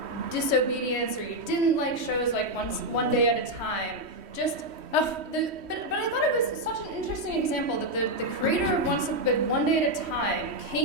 Disobedience or you didn't like shows like One Day at a Time. But I thought it was such an interesting example that the creator of One Day at a Time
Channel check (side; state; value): left; late; 3.1 ms